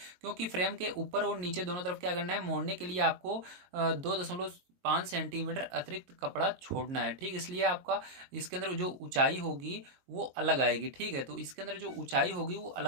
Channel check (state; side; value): late; left; 22 ms